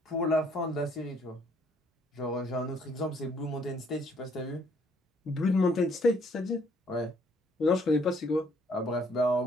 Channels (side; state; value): both; normal; correlation 0.65